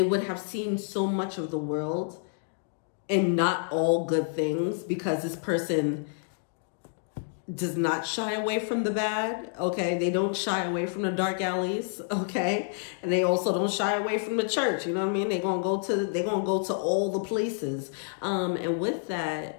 would have seen so much of the world and not all good things, because this person does not shy away from the bad, okay? They don't shy away from the dark alleys, okay? And they also don't shy away from the church, you know what I mean? They're gonna go to all the places. And with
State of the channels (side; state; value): right; silent; digital silence